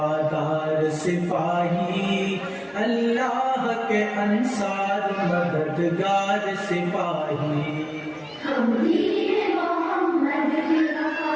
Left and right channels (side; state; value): both; identical; correlation 1.00